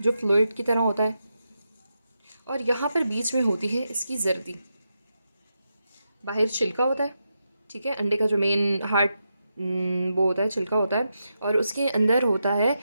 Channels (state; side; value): inverted; both; correlation -0.86